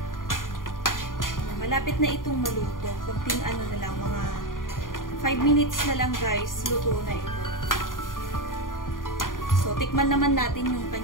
Malapit na itong maluto. Kunting ano na lang, mga 5 minutes na lang guys, luto na ito. So, tikman naman natin yung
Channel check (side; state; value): right; late; 0.90 ms